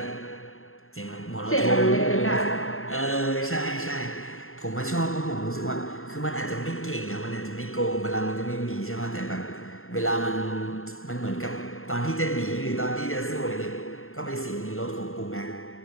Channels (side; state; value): right; late; 0.61 ms